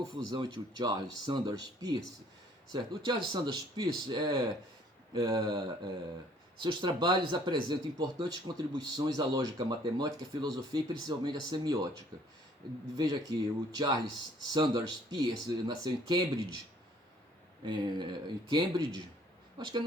entre o Charles Sanders Peirce, certo? O Charles Sanders Peirce seus trabalhos apresentam importantes contribuições à lógica matemática, à filosofia e principalmente à semiótica. Veja aqui, o Charles Sanders Peirce nasceu em Cambridge, acho que é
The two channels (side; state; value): both; normal; correlation 0.59